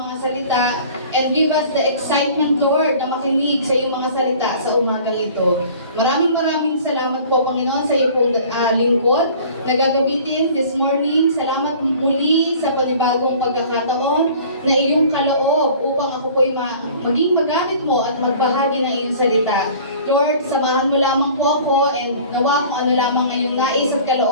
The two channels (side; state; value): both; inverted; correlation -0.47